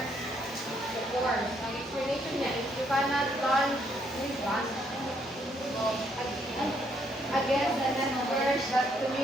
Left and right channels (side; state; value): both; normal; correlation 0.71